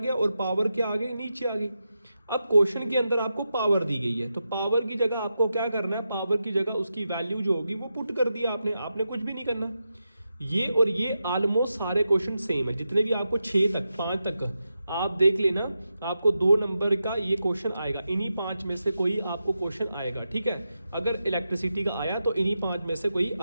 और पावर क्या आ गई, नीचे आ गई। अब क्वेश्चन के अंदर आपको पावर दी गई है, तो पावर की जगह आपको क्या करना है, पावर की जगह उसकी वैल्यू जो होगी वो पुट कर दिया आपने कुछ भी नहीं करना। ये और ये ऑलमोस्ट सारे क्वेश्चन सेम है, जितने भी आपको 6 तक 5 तक आप देख लेना, आपको 2 नंबर का ये क्वेश्चन आएगा, इन्हीं 5 में से कोई आपको क्वेश्चन आएगा, ठीक है। अगर इलेक्ट्रिसिटी का आया तो इन्हीं 5 में से कोई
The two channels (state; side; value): inverted; both; correlation -0.88